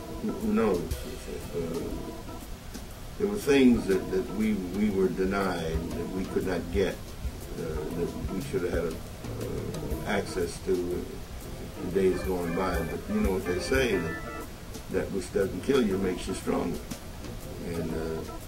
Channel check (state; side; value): identical; both; correlation 1.00